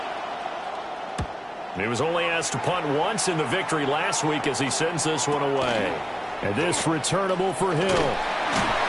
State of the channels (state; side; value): identical; both; correlation 1.00